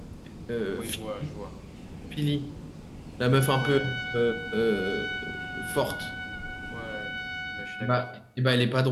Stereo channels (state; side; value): identical; both; correlation 1.00